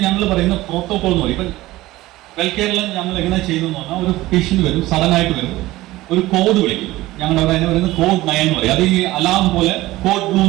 ഞങ്ങൾ പറയുന്ന പ്രോട്ടോകോൾ എന്ന് പറയും. ഇപ്പം വെൽകെയറിൽ ഞങ്ങൾ എങ്ങനെ ചെയ്തെന്ന് പറഞ്ഞാൽ, ഒരു പേഷ്യന്റ് വരും, സഡൻ ആയിട്ട് വരും, ഒരു കോഡ് വിളിക്കും, ഞങ്ങളുടെ അവിടെ പറയുന്നത് കോഡ് 9 എന്ന് പറയും. അത് ഈ അലാം പോലെ, കോഡ് ബ്ലൂ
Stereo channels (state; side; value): quieter; left; 17.6 dB